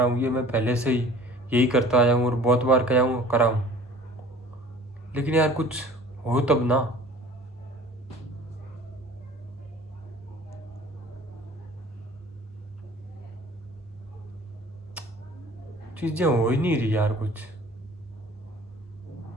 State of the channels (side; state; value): both; normal; correlation 0.47